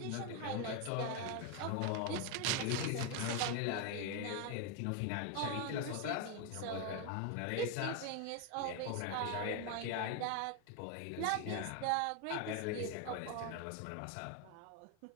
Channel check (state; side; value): different; both; correlation 0.01